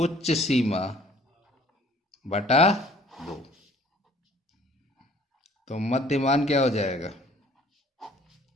सीमा बटा 2। तो मध्यमान क्या हो जाएगा,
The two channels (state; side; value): normal; both; correlation 0.55